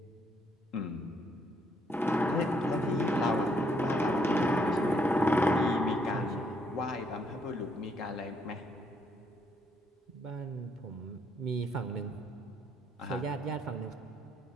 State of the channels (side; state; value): both; normal; correlation 0.72